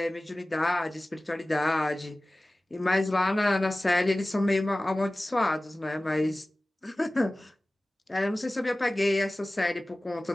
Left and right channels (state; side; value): normal; both; correlation 0.97